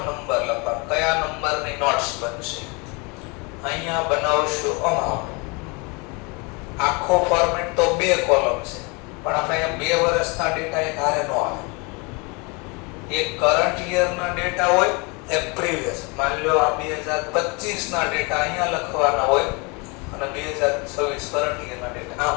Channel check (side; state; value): right; quieter; 29.6 dB